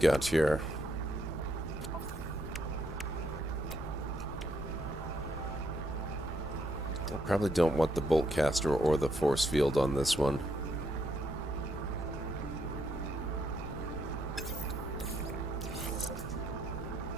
here. I probably don't want the bolt caster or the force field on this one.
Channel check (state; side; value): normal; both; correlation 0.75